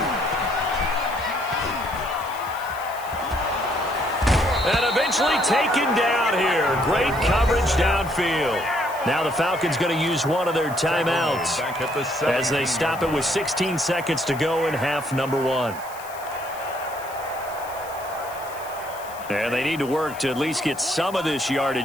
And eventually taken down here. Great coverage downfield. Now the Falcons going to use one of their timeouts as they stop it with 16 seconds to go in half number 1. And they need to work to at least get some of this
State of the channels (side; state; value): left; noise; hiss, 18 dB below the sound